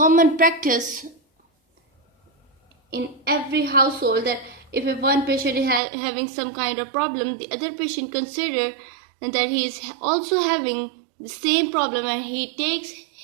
practice in every household that if one patient is having some kind of problem, the other patient consider that he is also having the same problem and he takes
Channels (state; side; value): drops out; left; at 5.8 s